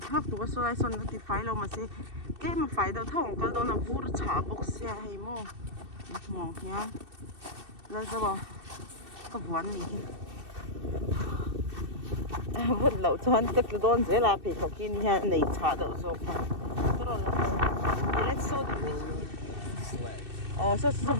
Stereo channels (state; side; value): late; left; 2.6 ms